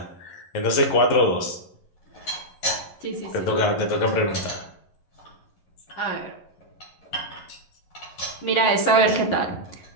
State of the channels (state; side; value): late; right; 11 ms